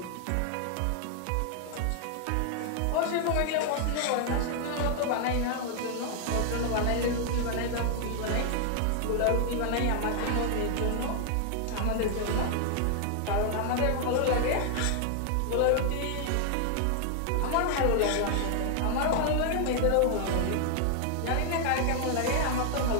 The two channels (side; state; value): both; different; correlation 0.00